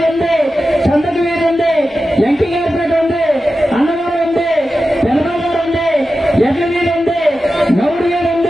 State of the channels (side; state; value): both; normal; correlation 0.92